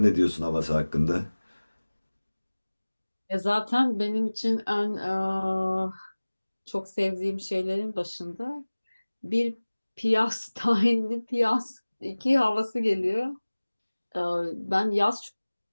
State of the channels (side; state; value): both; inverted; correlation -1.00